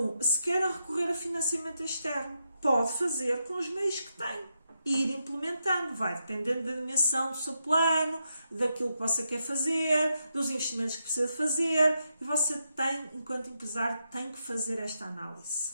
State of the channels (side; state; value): both; inverted; correlation -0.84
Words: sequer a recorrer a financiamento externo. Pode fazer com os meios que tem. Ir implementando, vai dependendo da dimensão do seu plano, daquilo que você quer fazer, dos investimentos que precisa fazer, e você tem, enquanto empresário, tem que fazer esta análise